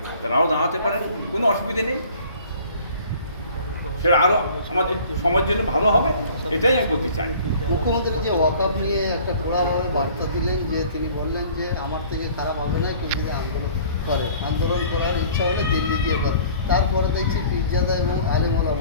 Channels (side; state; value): both; inverted; correlation -0.50